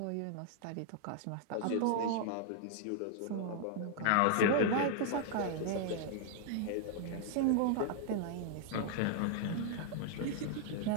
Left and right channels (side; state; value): both; different; correlation -0.01